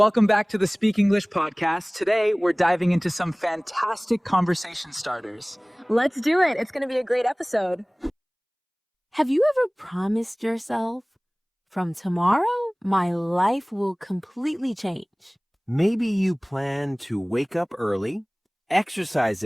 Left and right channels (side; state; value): both; identical; correlation 1.00